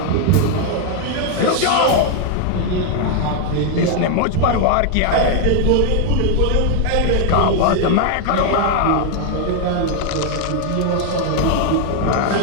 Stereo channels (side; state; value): both; different; correlation 0.00